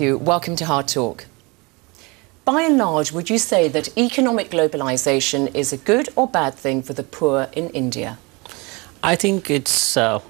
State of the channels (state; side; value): quieter; left; 27.1 dB